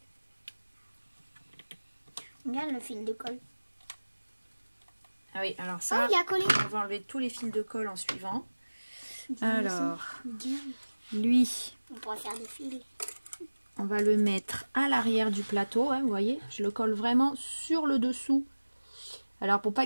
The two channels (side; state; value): both; inverted; correlation -1.00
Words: Regarde le fil de colle. Ah oui, alors ça, il a collé. on va enlever tous les fils de colle en suivant. Alors, lui, on pourra faire des fils. on va le mettre à l'arrière du plateau, hein, vous voyez, je le colle vraiment sur le dessous. Alors pour pas